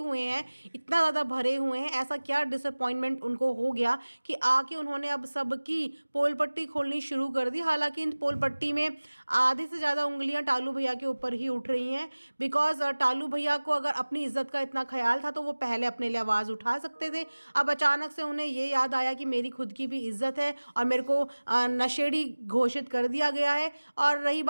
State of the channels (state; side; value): inverted; both; correlation -1.00